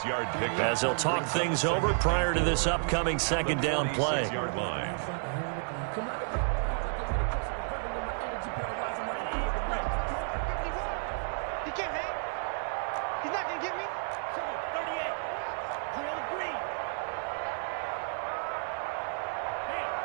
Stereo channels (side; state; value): left; silent; 57 dB below the other